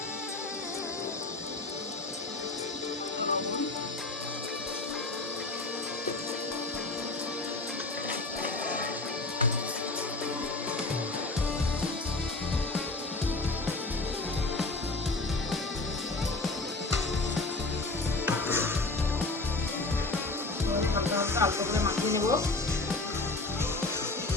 হালকা করে মাখিয়ে নেব।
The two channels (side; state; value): right; quieter; 3.2 dB